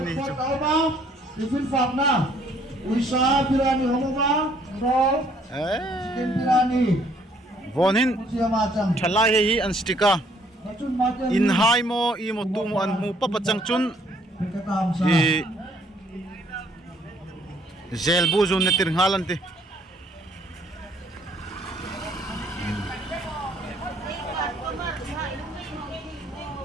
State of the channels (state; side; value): normal; both; correlation 0.64